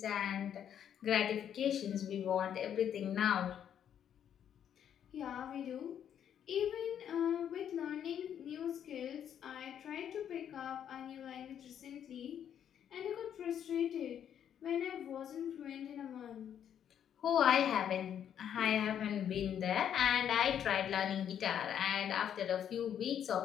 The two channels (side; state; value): right; quieter; 9.3 dB